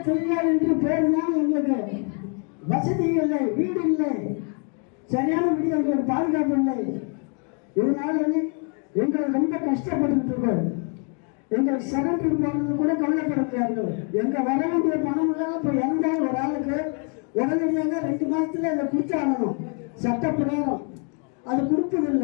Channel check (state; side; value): quieter; right; 39.8 dB